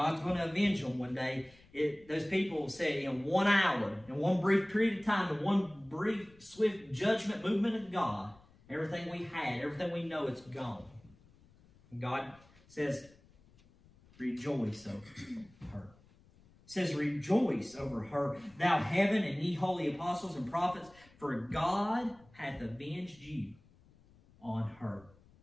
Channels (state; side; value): noise; left; rumble, 27 dB below the sound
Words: going to avenge them one day. Those people say in 1 hour, in one brief period of time, in one brief, swift judgment movement of God, everything we had, everything we know, it's gone. And God says, rejoice over her. It says, rejoice over her, thou heaven, and ye holy apostles and prophets, for God hath avenged you on her.